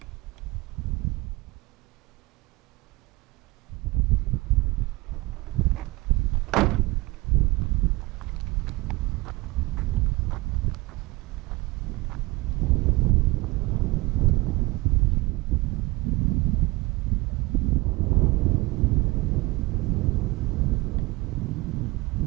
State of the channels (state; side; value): quieter; left; 22.1 dB